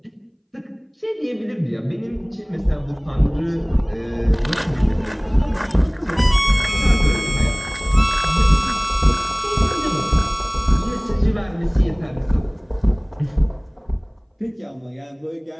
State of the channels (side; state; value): both; identical; correlation 1.00